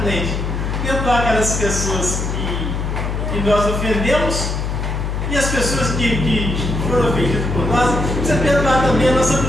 Perdoar aquelas pessoas que nós ofendemos, e as pessoas que foram ofendidas por nós. Precisa perdoar também a nossa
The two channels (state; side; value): noise; left; hum, 2 dB below the sound